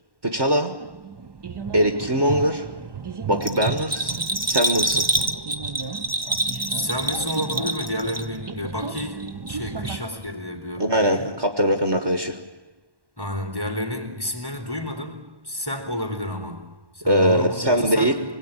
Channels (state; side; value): late; left; 1.1 ms